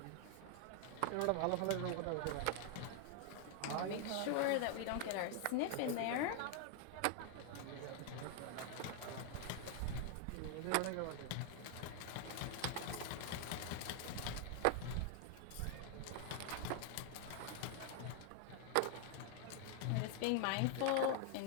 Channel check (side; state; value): both; different; correlation 0.00